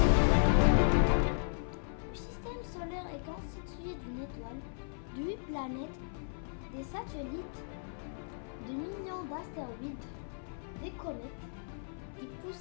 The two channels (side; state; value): right; silent; 54 dB below the other